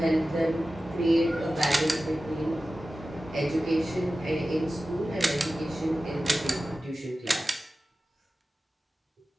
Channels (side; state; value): both; normal; correlation 0.95